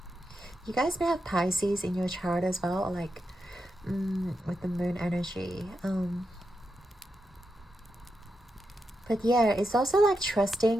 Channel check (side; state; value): both; normal; correlation 0.86